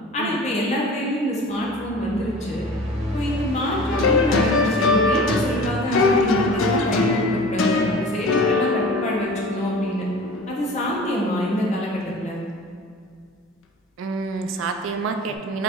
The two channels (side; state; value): both; normal; correlation 0.40